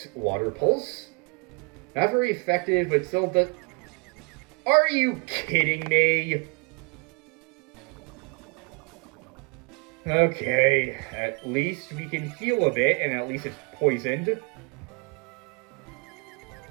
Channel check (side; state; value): left; quieter; 31.8 dB